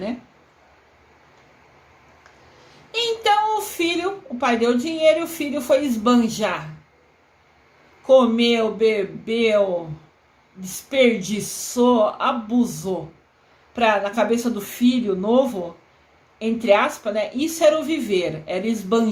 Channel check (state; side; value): identical; both; correlation 1.00